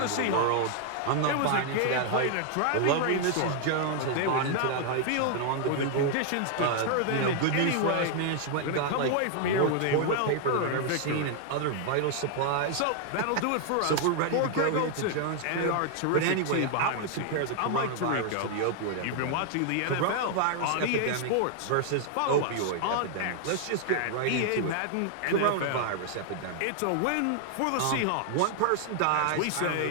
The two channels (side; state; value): both; different; correlation 0.00